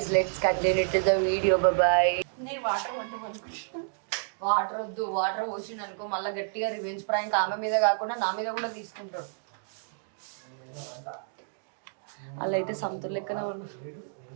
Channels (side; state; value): left; silent; digital silence